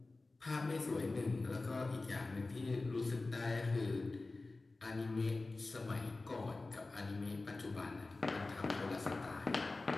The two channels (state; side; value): quieter; right; 3.4 dB